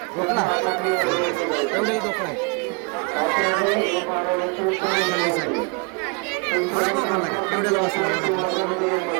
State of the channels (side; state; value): left; quieter; 31.9 dB